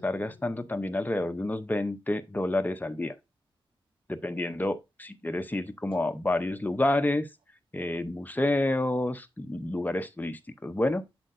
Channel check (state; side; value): normal; both; correlation 0.91